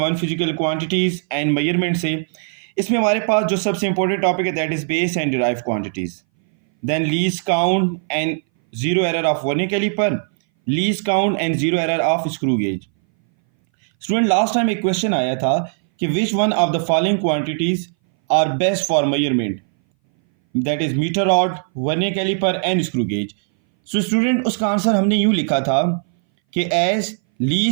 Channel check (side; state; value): left; silent; 61 dB below the other